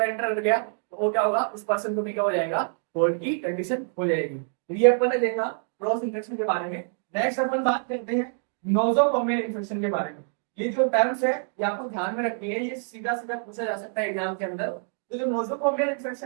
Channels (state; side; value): silent; left; 61 dB below the other